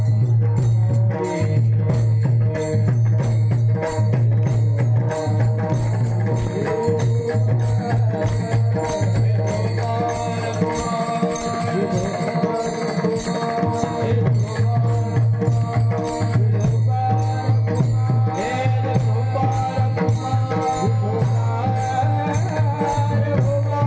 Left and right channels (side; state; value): both; identical; correlation 1.00